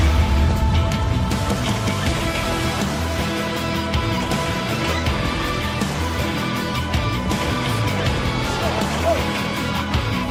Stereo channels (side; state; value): both; identical; correlation 1.00